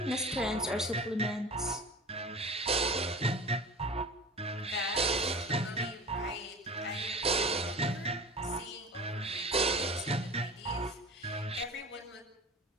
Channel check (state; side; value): normal; both; correlation 0.36